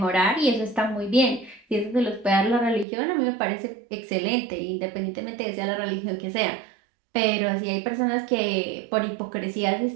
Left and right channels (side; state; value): left; drops out; at 2.9 s